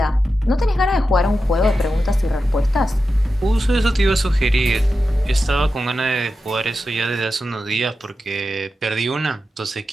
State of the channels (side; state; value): both; normal; correlation 0.91